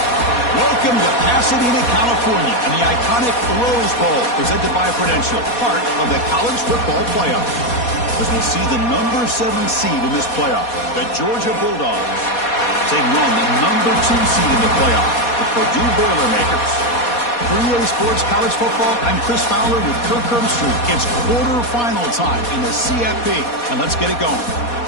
Welcome to Pasadena, California, and the iconic Rose Bowl, presented by Prudential, part of the college football playoff. As we'll see the number 7 seed in this playoff, the Georgia Bulldogs, taking on the number 2 seed in the playoff, the Purdue Boilermakers. For EA Sports College Football, I'm Chris Fowler with Kirk Herbstreit. It's quarterfinal time in the CFP, and let's get it going.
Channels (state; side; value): late; right; 4.2 ms